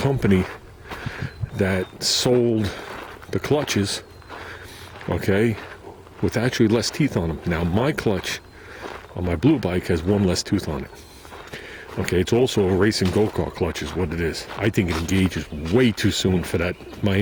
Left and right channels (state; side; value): identical; both; correlation 1.00